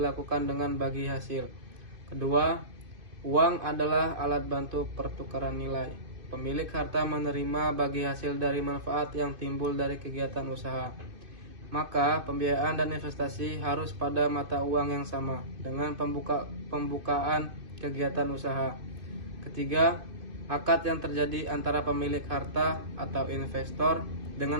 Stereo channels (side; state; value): left; late; 2.5 ms